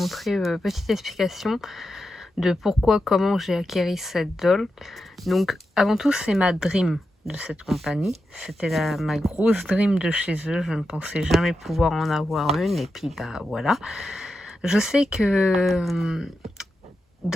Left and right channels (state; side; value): normal; both; correlation 0.88